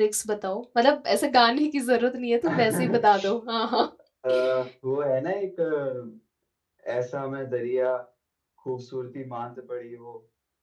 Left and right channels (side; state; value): both; identical; correlation 1.00